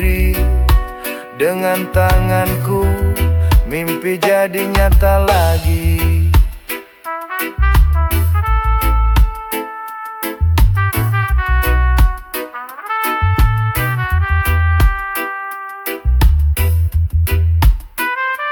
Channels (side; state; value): both; identical; correlation 1.00